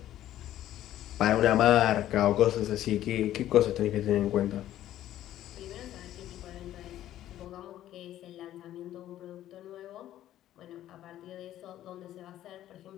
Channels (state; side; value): quieter; right; 12.8 dB